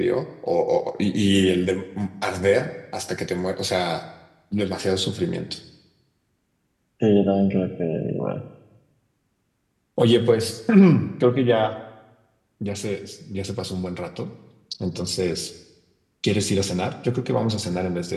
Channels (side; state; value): both; identical; correlation 1.00